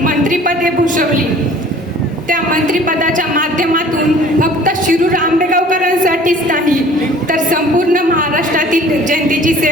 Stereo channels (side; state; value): both; normal; correlation 0.50